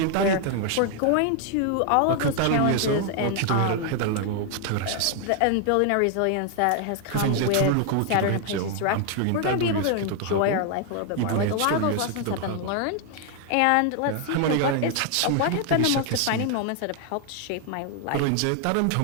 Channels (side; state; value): both; different; correlation 0.00